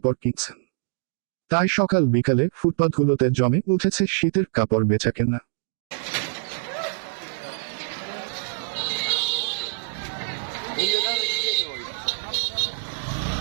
কিনছেন। তাই সকাল বিকালে ফুটপাতগুলোতে জমে উঠেছে শীতের কাপড় বেচাকেনা।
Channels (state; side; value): silent; left; digital silence